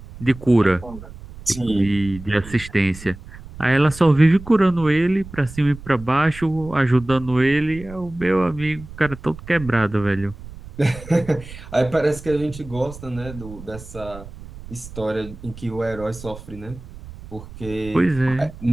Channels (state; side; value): noise; right; rumble, 15 dB below the sound